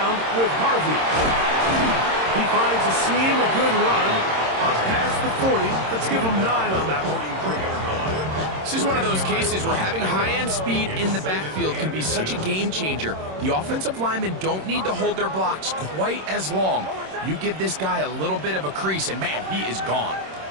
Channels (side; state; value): left; late; 26 ms